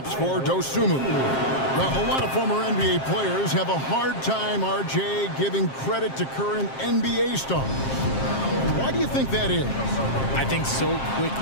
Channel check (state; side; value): late; right; 7.5 ms